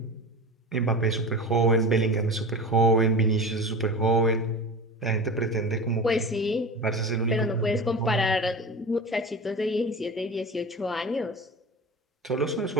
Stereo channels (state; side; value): normal; both; correlation 0.31